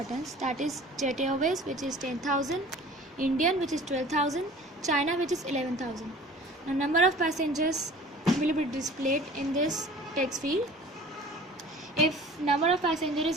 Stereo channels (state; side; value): normal; both; correlation 0.45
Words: that is Jet Airways, which is 10,000, Indian, which is 12,000, China, which is 11,000. Now number of passengers will be displayed in this text field. If number of passengers is